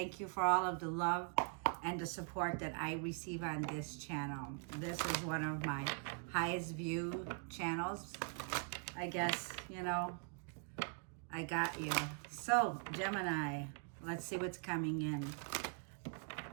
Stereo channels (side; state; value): left; quieter; 38.3 dB